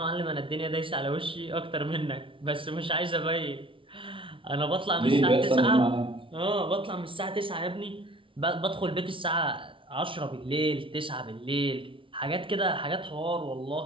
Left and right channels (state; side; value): late; left; 0.25 ms